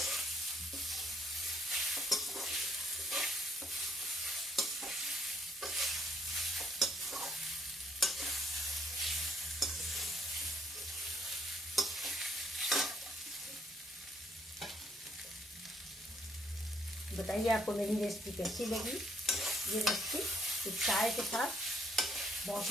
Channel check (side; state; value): both; normal; correlation 0.70